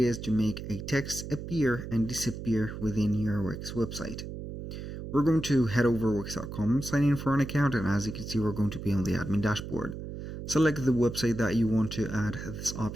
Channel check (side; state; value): right; noise; hum, 8 dB below the sound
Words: to make a text appear and disappear within your Wix website. We're going to head over wix.com, sign in for an account, and as you can see we're going to be on the admin dashboard. Select the website that you want to add this